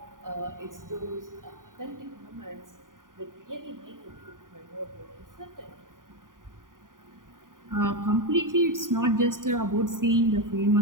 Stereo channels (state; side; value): late; left; 0.89 ms